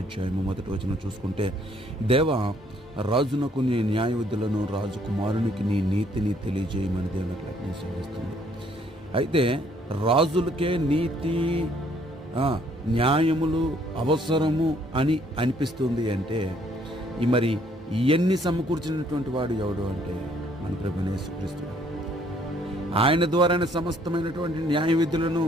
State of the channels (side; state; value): both; normal; correlation 0.64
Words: అధ్యాయము 1వ వచనం చూసుకుంటే, దేవా రాజునకు నీ న్యాయ విధులను, రాజకుమారునికి నీ నీతిని తెలియజేయమని దేవుని యొక్క వాక్యం సెలవిస్తుంది. అయితే రాజులకే నీతి న్యాయములు అవసరము అని అనిపిస్తుంది అంటే, మరి ఇవన్నీ సమకూర్చినటువంటి వాడు ఎవడు అంటే మన ప్రభువైన యేసుక్రీస్తు. ఆయన ద్వారానే సమస్తమైనటువంటి న్యాయ విధులను,